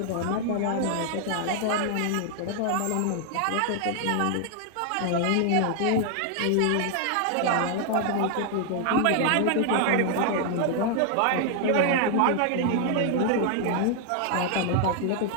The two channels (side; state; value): both; different; correlation 0.00